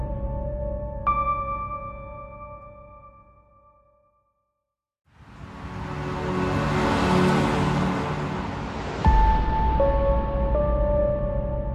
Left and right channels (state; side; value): identical; both; correlation 1.00